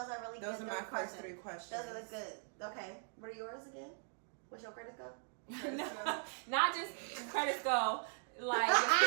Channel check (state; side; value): silent; left; 51 dB below the other